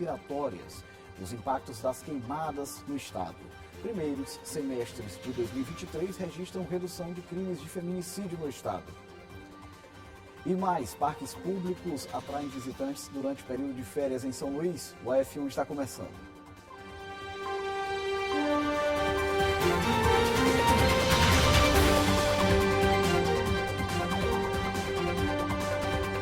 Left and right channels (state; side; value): identical; both; correlation 1.00